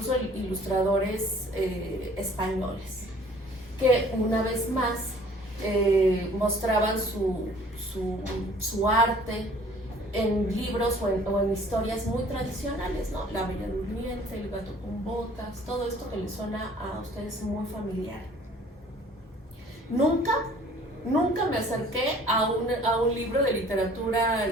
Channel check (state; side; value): normal; both; correlation 0.53